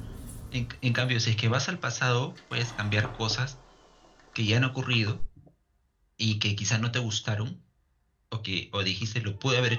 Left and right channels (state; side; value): identical; both; correlation 1.00